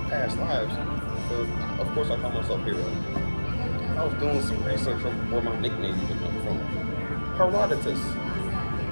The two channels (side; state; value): both; inverted; correlation -1.00